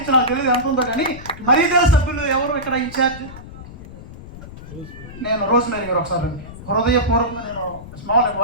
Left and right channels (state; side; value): noise; left; rumble, 15 dB below the sound